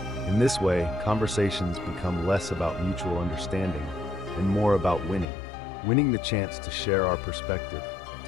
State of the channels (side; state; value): right; drops out; at 5.2 s